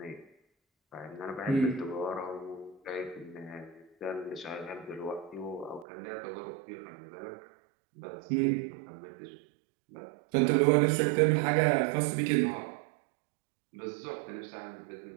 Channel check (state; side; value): drops out; left; at 5.9 s